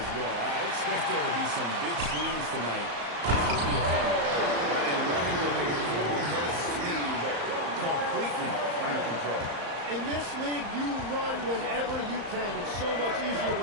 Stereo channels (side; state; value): left; late; 35 ms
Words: well. I expect there to be some big swings tonight. This will be a fun one. And running with a full head of steam, but completely under control. In this this league, you run whenever you can. It's so much easier